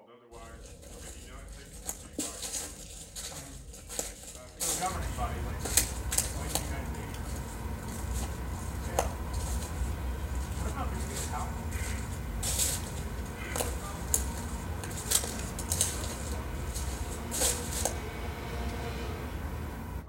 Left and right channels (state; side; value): identical; both; correlation 1.00